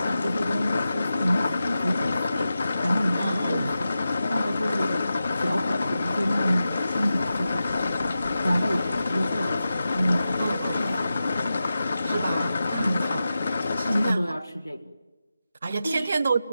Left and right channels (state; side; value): inverted; both; correlation -0.92